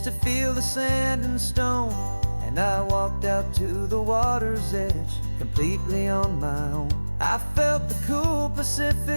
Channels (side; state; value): both; inverted; correlation -1.00